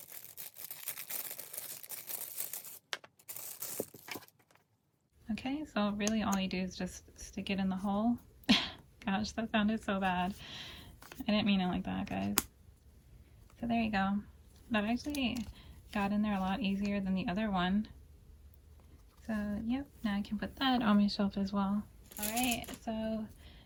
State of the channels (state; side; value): identical; both; correlation 1.00